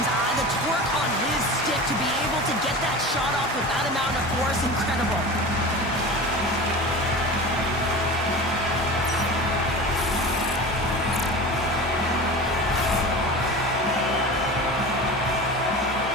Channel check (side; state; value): both; normal; correlation 0.32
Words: The torque on his stick to be able to get that shot off with that amount of force, incredible.